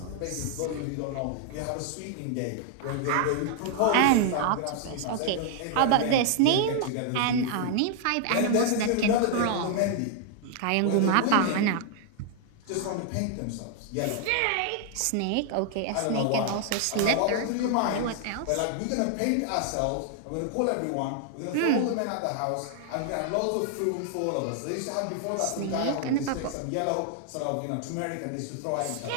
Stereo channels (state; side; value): different; both; correlation 0.00